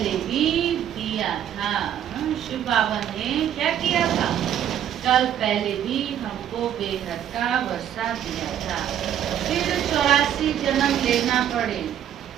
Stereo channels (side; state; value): left; quieter; 10.2 dB